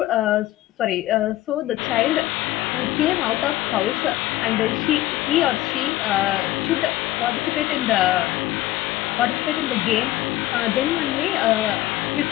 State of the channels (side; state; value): right; quieter; 16.0 dB